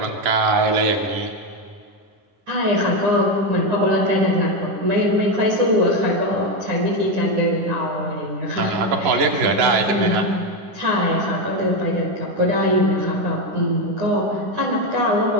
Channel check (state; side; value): late; left; 10 ms